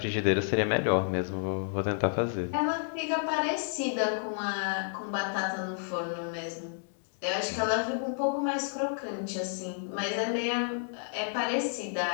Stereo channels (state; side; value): silent; right; digital silence